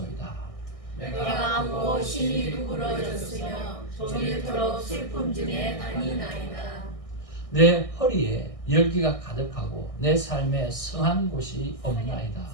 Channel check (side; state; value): right; late; 1.6 ms